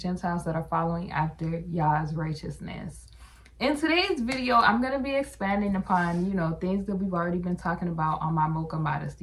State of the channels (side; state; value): both; identical; correlation 1.00